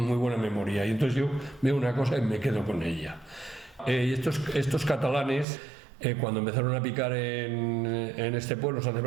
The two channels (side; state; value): left; drops out; at 5.5 s